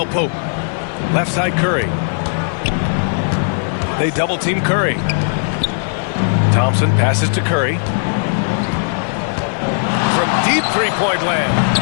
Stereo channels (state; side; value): silent; right; 68 dB below the other